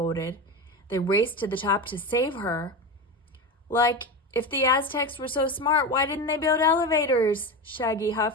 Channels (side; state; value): both; normal; correlation 0.21